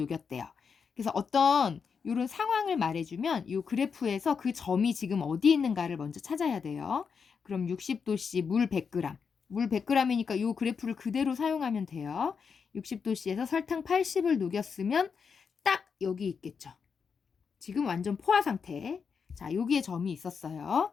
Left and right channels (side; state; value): right; quieter; 6.0 dB